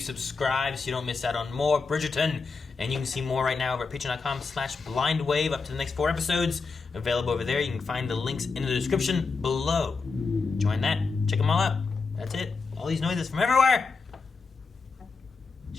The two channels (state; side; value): quieter; right; 4.5 dB